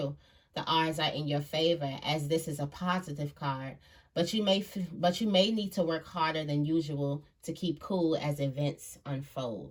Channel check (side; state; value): both; identical; correlation 1.00